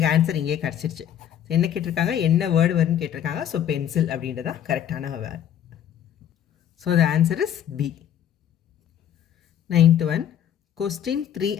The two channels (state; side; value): quieter; right; 10.0 dB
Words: ஆன்சர் இங்கேயே கிடச்சிருச்சு. ஸோ என்ன கேட்டிருக்காங்க? என்ன வேர்டு வரும்னு கேட்டிருக்காங்க. ஸோ பென்சில் அப்படின்றதான் கரெக்டான word. So the answer is B. 9th one. Question 3